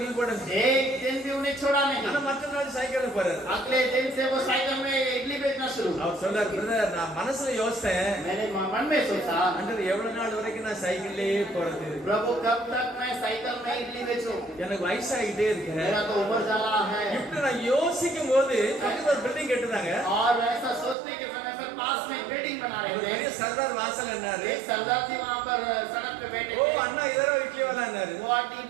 போடுங்க. एक दिन भी उन्हें छोड़ा ஆனா नहीं। மற்ற நாள் சைக்கிள்ல போறாரு. अगले दिन से वो साइकिल में इडली बेचना शुरू। அவர் சொல்றாரு, பிரதர் நான் மனசுல யோசித்தேன், मैंने मन में सोचा ஆண்டவர் எவ்வளவு நாள் வரைக்கும் நான் சைக்கிள்லயே போறது. प्रभु कब तक मैं साइकिल में इडली बेचूं, எனக்கு வயசாகிட்டே இருக்கு. मेरा तो उम्र जाला है। இப்படி நான் யோசிக்கும் போது பக்கத்துல ஒரு பில்டிங் கட்டுறாங்க. और ऐसा सोचने के समय पर पास में बिल्डिंग बना ஒரு रहे பெரிய थे। சர்தார் வாசல் என்னாரு. एक सरदार जी वहाँ पर सड़क पे बैठे ஓ थे। அண்ணா இதரோ இட்லி वाला என்னாரு. वो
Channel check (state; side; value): drops out; left; at 21.0 s